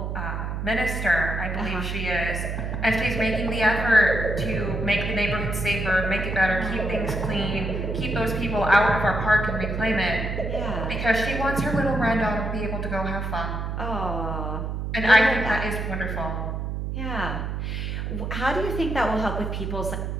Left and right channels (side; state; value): right; noise; hum, 3 dB below the sound